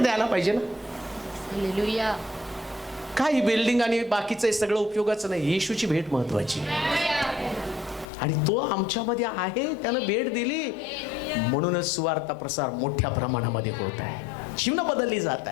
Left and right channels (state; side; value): drops out; right; at 8.1 s